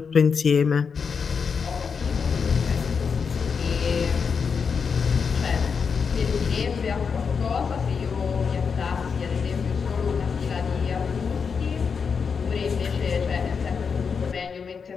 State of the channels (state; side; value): quieter; right; 5.9 dB